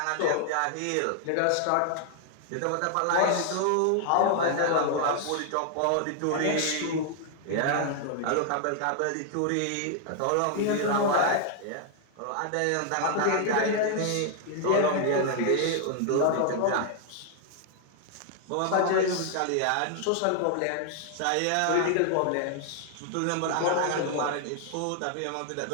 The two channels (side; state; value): both; different; correlation 0.00